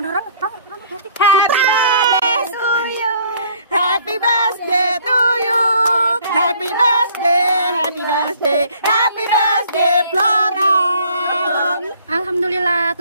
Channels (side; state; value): both; inverted; correlation -0.58